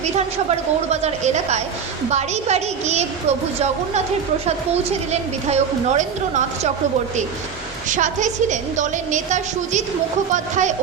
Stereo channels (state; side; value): quieter; left; 6.8 dB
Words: বিধানসভার গৌড়বাজার এলাকায় বাড়ি বাড়ি গিয়ে প্রভু জগন্নাথের প্রসাদ পৌঁছে দিলেন বিধায়ক নরেন্দ্রনাথ চক্রবর্তী। সাথে ছিলেন দলের নেতা সুজিত মুখোপাধ্যায়